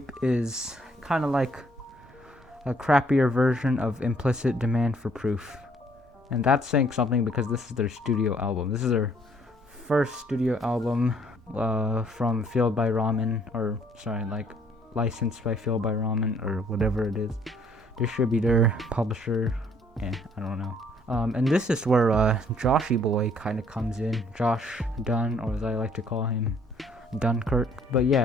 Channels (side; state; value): both; normal; correlation 0.63